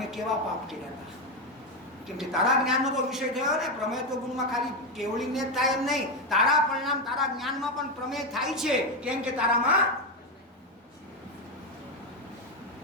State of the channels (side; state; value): both; normal; correlation 0.09